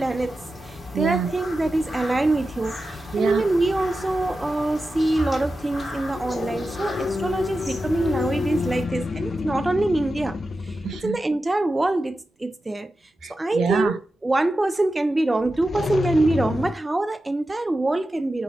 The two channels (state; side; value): normal; both; correlation 0.92